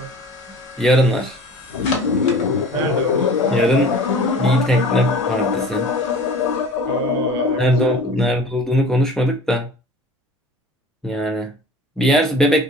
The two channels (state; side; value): normal; both; correlation 0.42